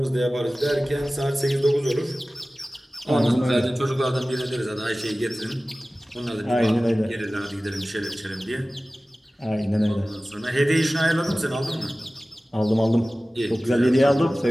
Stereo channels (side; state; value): both; normal; correlation 0.97